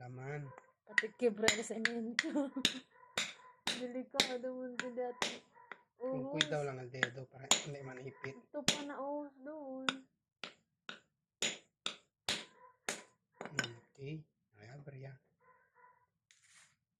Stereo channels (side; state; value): both; identical; correlation 1.00